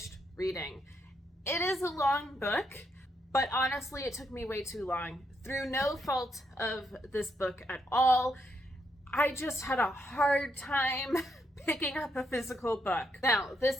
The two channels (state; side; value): normal; both; correlation 0.78